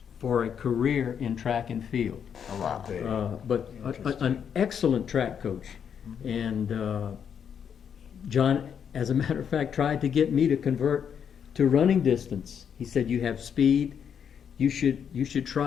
for a career in track and field. Oh, wow. But an excellent track coach. And John, as a matter of fact, tried to get me to convert to running distance. He said, "You have speed. You should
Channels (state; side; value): quieter; right; 7.8 dB